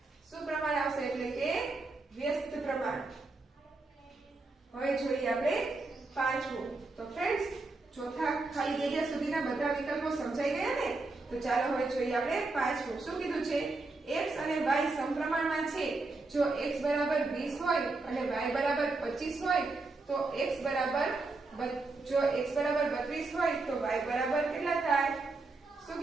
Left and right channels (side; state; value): left; quieter; 3.4 dB